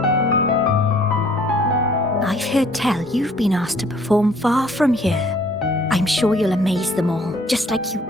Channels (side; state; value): both; normal; correlation 0.58